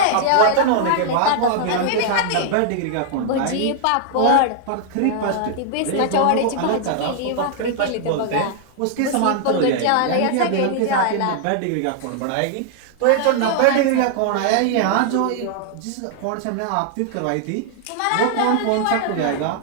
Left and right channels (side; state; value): both; different; correlation 0.00